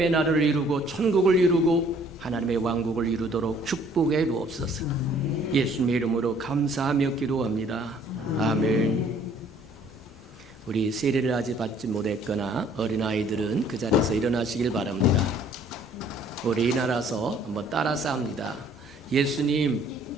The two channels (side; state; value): both; normal; correlation 0.58